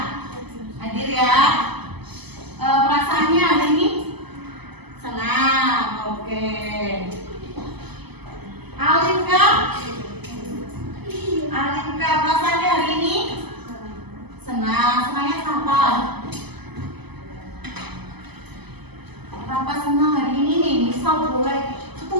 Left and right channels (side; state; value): left; late; 0.99 ms